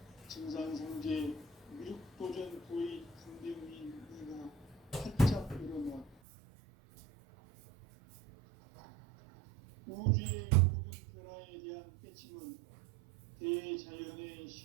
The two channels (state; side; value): drops out; left; at 6.2 s